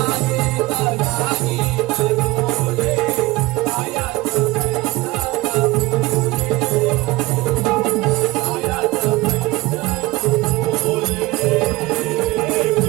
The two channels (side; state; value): left; quieter; 20.9 dB